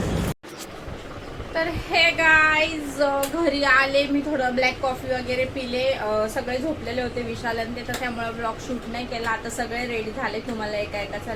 तर हे गाईज घरी आले मी. थोडं ब्लॅक कॉफी वगैरे पिले. सगळे झोपलेले होते विशाल आणि ते, तर त्यामुळे ब्लॉग शूट नाही केला. आता सगळे रेडी झाले. तुम्हाला एका एकाचा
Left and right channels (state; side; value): identical; both; correlation 1.00